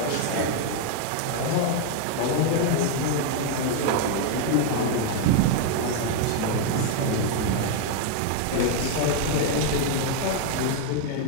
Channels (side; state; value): both; different; correlation 0.01